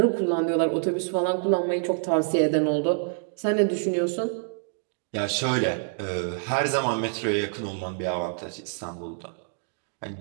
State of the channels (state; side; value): silent; left; digital silence